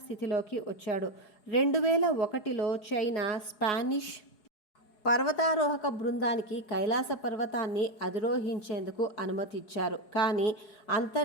స్థితిలోకి వచ్చాడు. 2001లో చైనా స్పానిష్ పర్వతారోహక బృందానికి కైలాస పర్వతాన్ని అధిరోహించేందుకు అనుమతిచ్చారు. కానీ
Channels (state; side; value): late; right; 4.8 ms